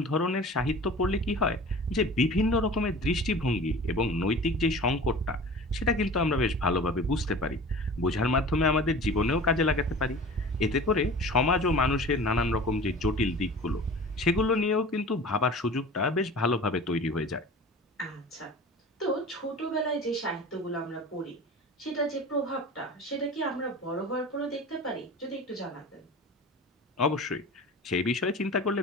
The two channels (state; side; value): normal; both; correlation 0.39